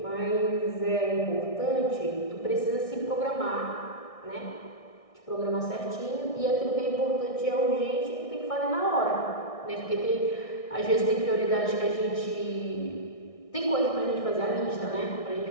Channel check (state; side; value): late; right; 1.6 ms